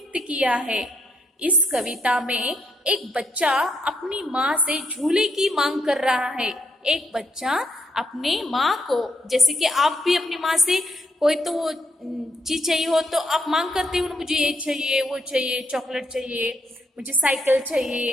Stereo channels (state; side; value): normal; both; correlation 0.76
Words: किया है। इस कविता में एक बच्चा अपनी माँ से झूले की मांग कर रहा है। एक बच्चा अपने माँ को, जैसे कि आप भी अपनी माँ से कोई तो चीज चाहिए हो तो आप मांग करते हो, मुझे ये चाहिए, वो चाहिए, चॉकलेट चाहिए, मुझे साइकिल